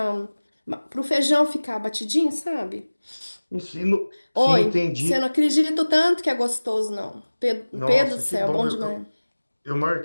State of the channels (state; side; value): inverted; both; correlation -1.00